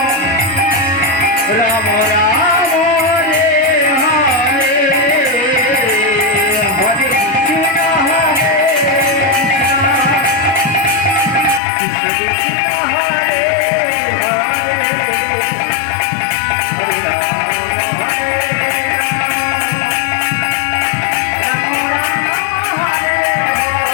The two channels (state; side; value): drops out; right; at 11.6 s